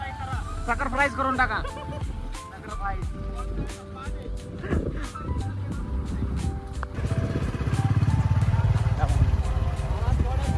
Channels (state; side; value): identical; both; correlation 1.00